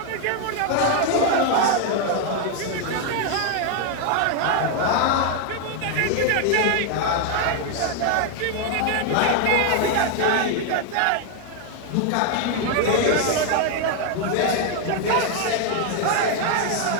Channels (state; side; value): different; both; correlation 0.00